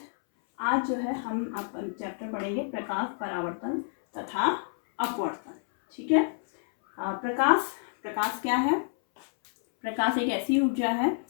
आज जो है हम आपका चैप्टर पढ़ेंगे प्रकाश, परावर्तन तथा अपवर्तन। ठीक है। प्रकाश क्या है? प्रकाश एक ऐसी ऊर्जा है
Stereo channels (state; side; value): silent; right; 59 dB below the other